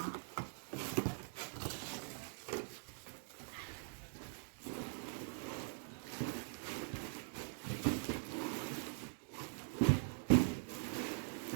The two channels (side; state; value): left; silent; digital silence